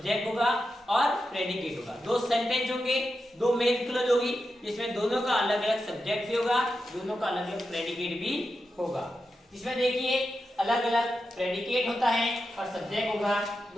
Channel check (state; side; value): normal; both; correlation 0.89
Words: होगा और प्रेडिकेट होगा। दो सेंटेंस होंगे, दो मेन क्लोज होगी, जिसमें दोनों का अलग अलग सब्जेक्ट भी होगा, दोनों का अलग अलग प्रेडिकेट भी होगा। इसमें देखिए अलग अलग प्रेडिकेट होता है और सब्जेक्ट होगा।